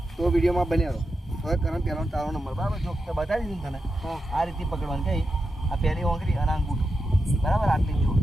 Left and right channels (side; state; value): both; normal; correlation 0.88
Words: તો વિડીયોમાં બન્યા રહો. હવે કરણ પહેલો તારો નંબર. બરાબર, જો બતાવી દીધું તને આ રીતે પકડવાનું. કઈ આ પહેલી ઓંગળી અને અંગૂઠો. બરાબર, આટલી જો